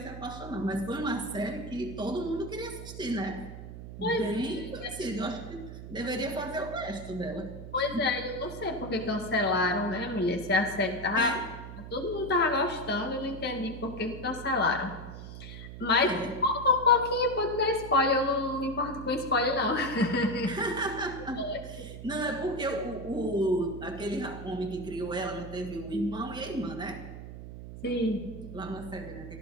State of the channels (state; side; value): noise; right; hum, 11 dB below the sound